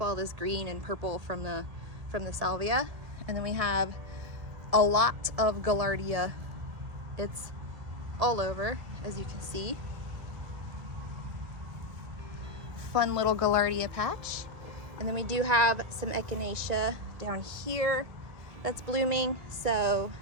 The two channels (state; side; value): late; left; 1.8 ms